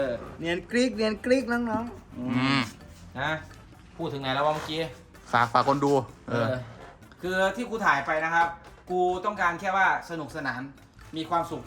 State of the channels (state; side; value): identical; both; correlation 1.00